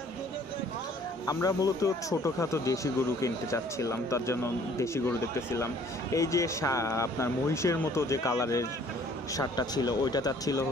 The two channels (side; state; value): both; normal; correlation 0.57